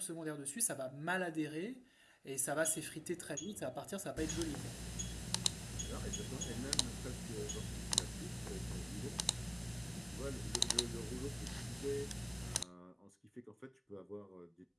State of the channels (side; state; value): both; identical; correlation 1.00